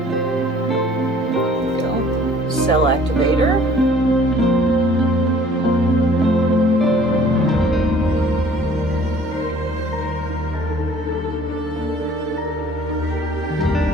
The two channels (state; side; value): normal; both; correlation 0.54